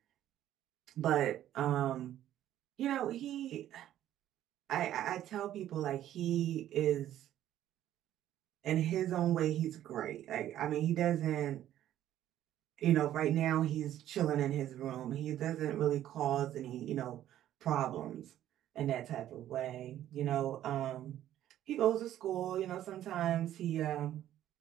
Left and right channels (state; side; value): quieter; left; 12.2 dB